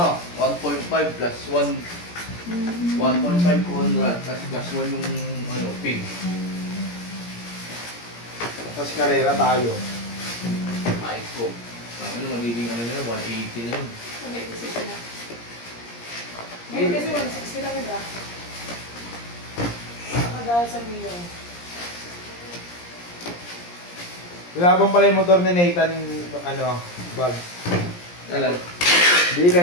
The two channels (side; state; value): right; late; 17 ms